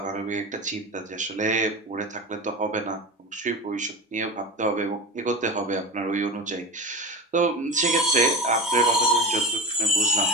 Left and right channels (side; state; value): both; normal; correlation 0.26